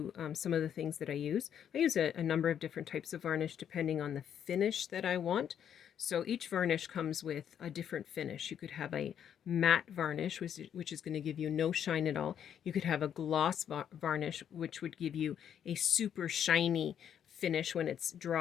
some of the things that I use. I use a number of different types of varnish depending on the finish that I want. So each varnish comes with a different finish. You could have a matte varnish, which is going to give you no shine at all. You could have a gloss varnish, which would give you a super shiny finish when it's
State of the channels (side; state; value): right; quieter; 9.1 dB